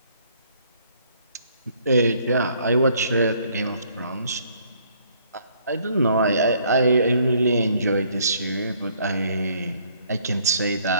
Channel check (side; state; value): both; inverted; correlation -0.64